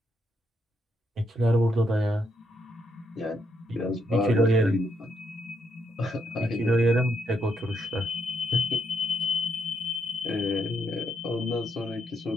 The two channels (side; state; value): both; normal; correlation 0.77